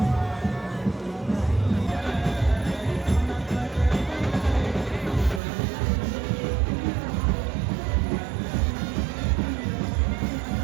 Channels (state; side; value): drops out; left; at 5.4 s